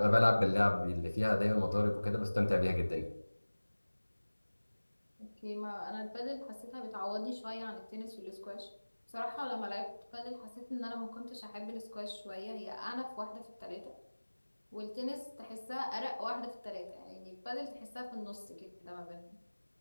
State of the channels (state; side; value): inverted; both; correlation -1.00